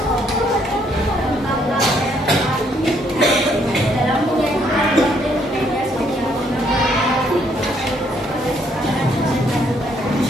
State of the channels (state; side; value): normal; both; correlation 0.69